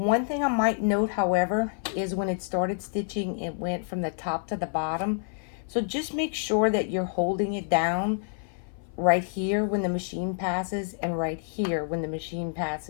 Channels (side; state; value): right; silent; 56 dB below the other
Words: thing I might note, however, is when it started stitching, it went from the top to the bottom. So just make sure that you're holding it down right here when the machine passes and right here when the machine